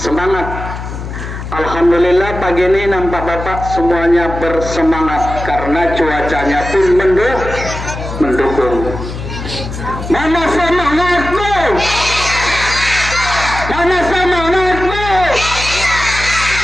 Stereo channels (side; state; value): left; noise; hum, 8 dB below the sound